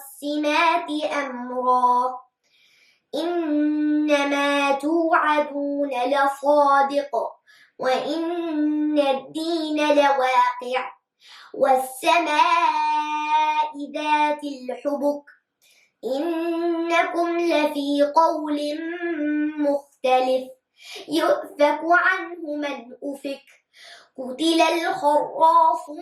أمرا إنما توعدون لصادق وإن الدين لواقع والسماء ذات الحبك إنكم لفي قول مختلف يؤفك عنه من أفك قتل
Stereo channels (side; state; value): both; identical; correlation 1.00